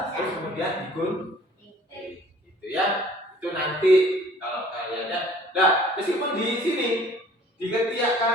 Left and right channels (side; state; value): both; normal; correlation 0.53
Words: terus kemudian digunting gitu ya. Itu nanti kalau kalian nah meskipun di sini di ketiak